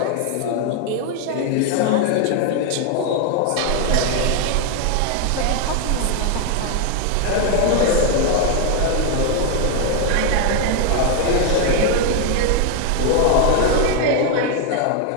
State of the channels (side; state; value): both; different; correlation 0.01